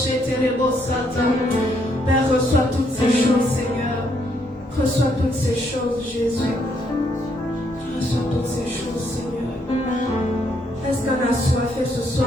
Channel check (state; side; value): normal; both; correlation 0.72